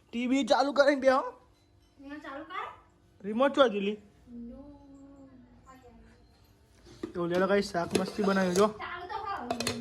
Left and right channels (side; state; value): both; identical; correlation 1.00